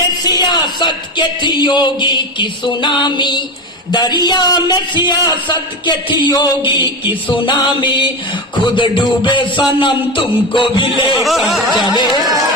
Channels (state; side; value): normal; both; correlation 0.20